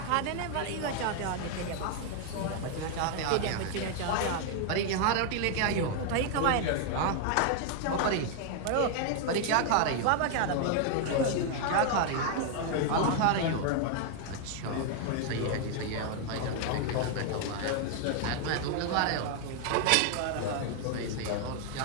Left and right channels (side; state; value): both; different; correlation 0.00